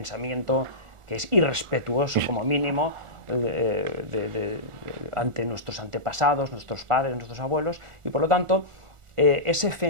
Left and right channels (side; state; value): left; late; 1.4 ms